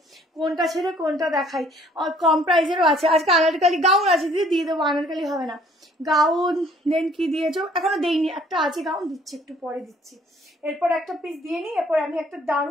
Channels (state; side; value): normal; both; correlation 0.59